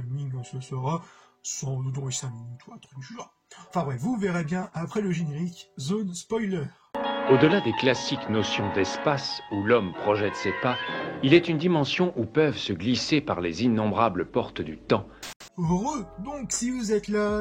ce sera, sans doute dans les 5 minutes ou un truc du genre. Enfin bref, vous verrez bien après le générique, zone spoiler. Au-delà des classiques notions d'espace où l'homme projette ses pas, il est une dimension où peuvent se glisser par les innombrables portes du temps. Donc si vous êtes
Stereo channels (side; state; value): both; identical; correlation 1.00